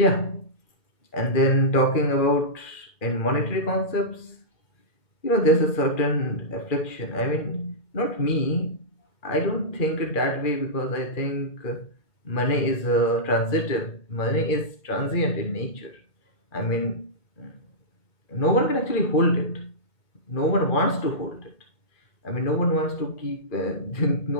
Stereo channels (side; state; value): right; late; 2.4 ms